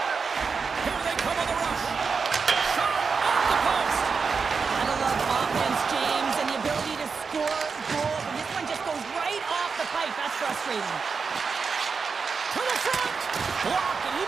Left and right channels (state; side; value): quieter; left; 5.2 dB